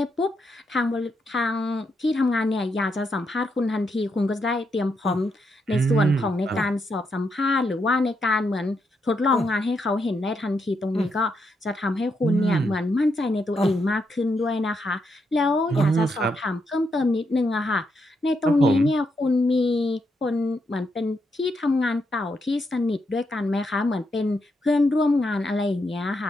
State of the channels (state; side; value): normal; both; correlation 0.80